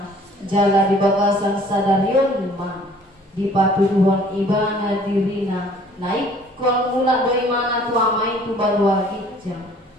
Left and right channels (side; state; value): both; normal; correlation 0.54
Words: jala di bagasan sadarion ma di patuduhon ibana dirina naik kon mula do imana tu amai tu balua gijang